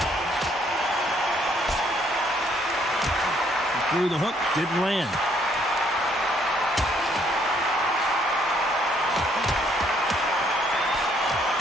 through the hook, didn't land.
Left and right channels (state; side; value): normal; both; correlation 0.67